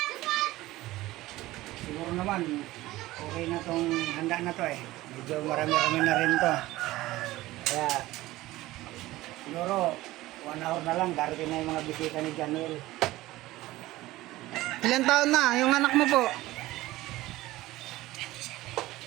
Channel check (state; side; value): quieter; left; 17.5 dB